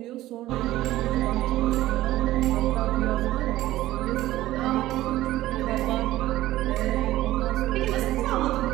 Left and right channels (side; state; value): left; quieter; 15.6 dB